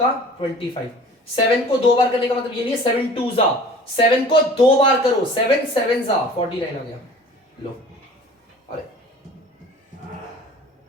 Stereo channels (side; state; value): both; normal; correlation 0.45